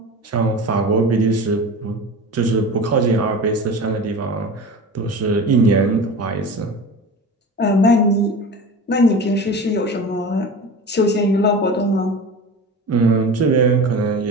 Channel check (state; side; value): normal; both; correlation 0.32